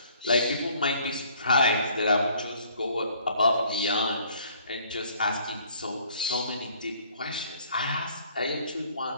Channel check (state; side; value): inverted; both; correlation -0.58